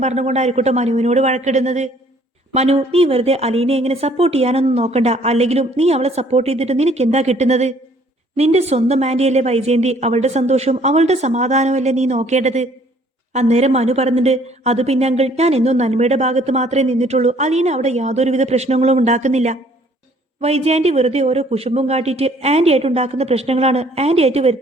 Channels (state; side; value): normal; both; correlation 0.59